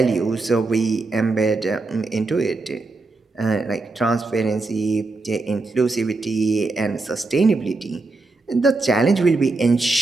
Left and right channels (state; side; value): quieter; left; 3.5 dB